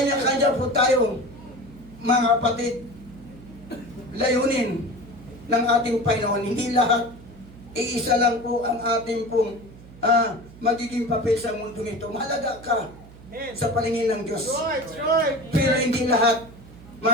po tayo, mga kapatid, layunin ng ating Panginoon. Hindi lahat, iisa lang po ang ating pong magiging papel sa mundo ito. Mahalaga ka Amen. sa paningin ng Diyos. Right, right. Pero hindi lahat,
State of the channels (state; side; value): noise; right; hum, 20 dB below the sound